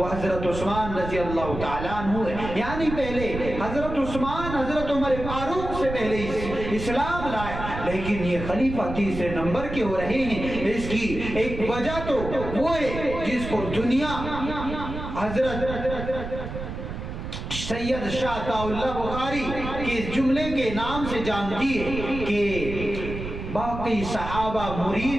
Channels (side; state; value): right; noise; rumble, 7 dB below the sound